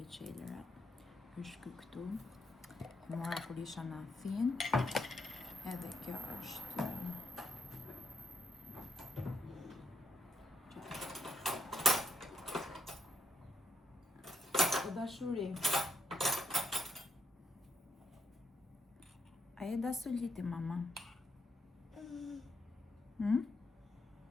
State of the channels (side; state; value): both; normal; correlation 0.79